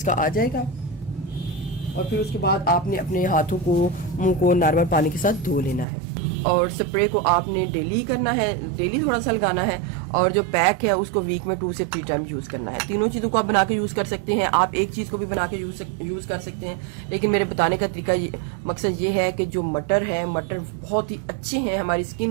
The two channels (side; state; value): left; drops out; at 5.9 s